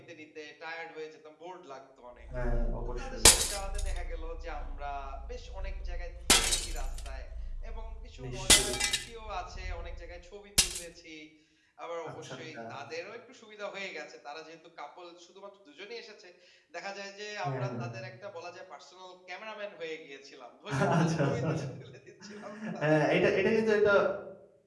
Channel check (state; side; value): identical; both; correlation 1.00